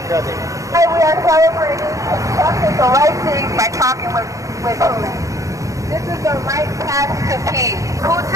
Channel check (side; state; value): left; late; 0.16 ms